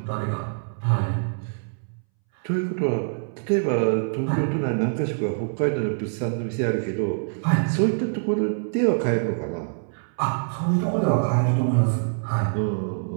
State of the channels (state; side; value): silent; left; 62 dB below the other